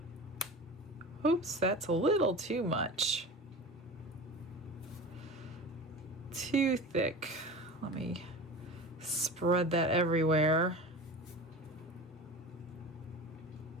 Oops, that's a little too much. Too thick. Let me spread that everywhere.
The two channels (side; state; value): both; normal; correlation 0.33